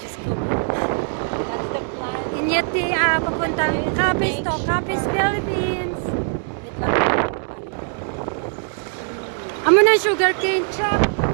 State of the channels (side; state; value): left; silent; 60 dB below the other